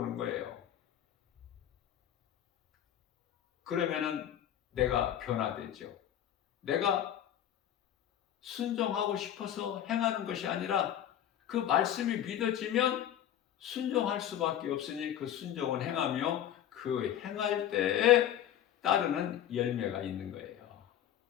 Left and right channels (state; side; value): quieter; right; 10.9 dB